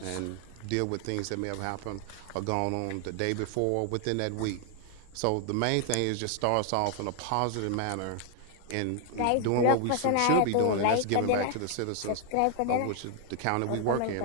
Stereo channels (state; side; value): different; both; correlation 0.00